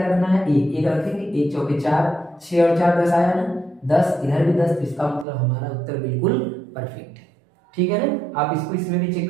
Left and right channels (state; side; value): drops out; left; at 5.2 s